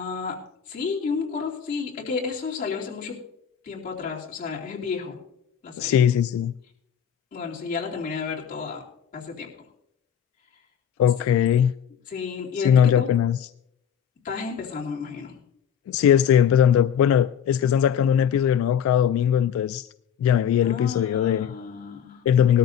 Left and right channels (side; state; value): right; quieter; 8.5 dB